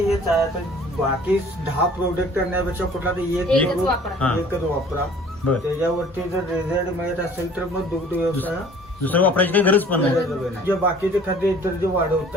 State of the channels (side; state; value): both; normal; correlation 0.51